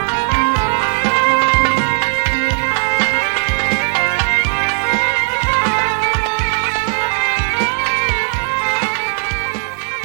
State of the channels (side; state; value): left; silent; 58 dB below the other